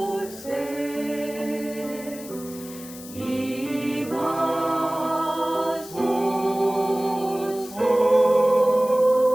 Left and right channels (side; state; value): left; noise; hiss, 16 dB below the sound